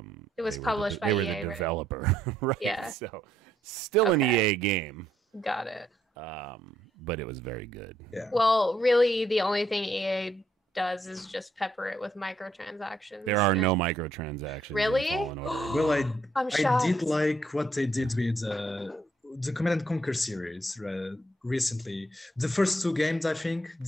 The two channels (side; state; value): both; normal; correlation 0.72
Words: It was they were published by they were EA, the right? developer, right? Yeah. So still an Okay. EA game, Got it. but it was very good. Yeah. Well, really, the only thing EA does is just pepper it with microtransactions. There are no microtransactions. Really? In Fallen Order. Well, I'm I shocked. did like what they did with the Command and Conquer series recently. The first two games, I think,